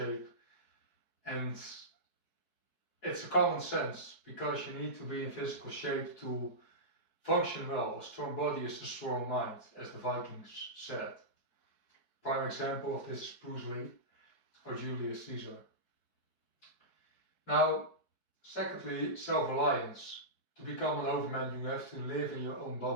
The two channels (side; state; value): right; late; 4.6 ms